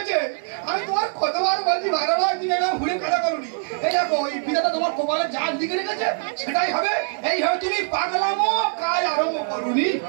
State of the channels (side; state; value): left; silent; 62 dB below the other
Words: আমি তোমার কতবার বলছি ভাড়া ভাই, তুমি এটা ঘুরে কাটা করুনি। এই দেখো, এই বিধাতা তোমার কপালে যা দিকে রেখেছে সেটাই হবে। এইভাবে তুমি পাগলামো কাজ আরম্ভ করুনি।